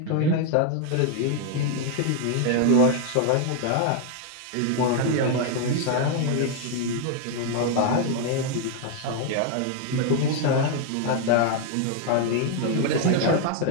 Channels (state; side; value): different; both; correlation 0.00